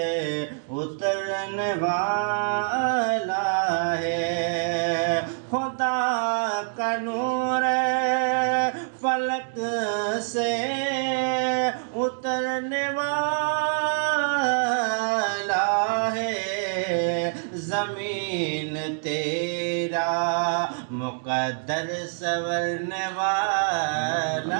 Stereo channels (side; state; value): left; silent; digital silence